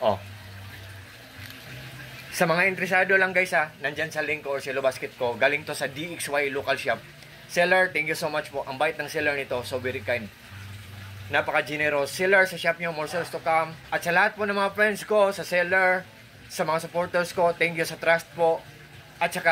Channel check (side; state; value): both; identical; correlation 1.00